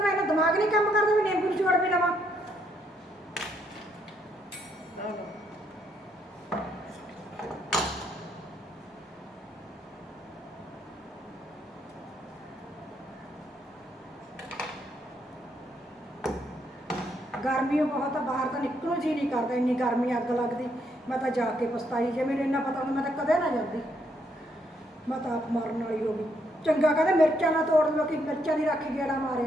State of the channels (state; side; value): normal; both; correlation 0.74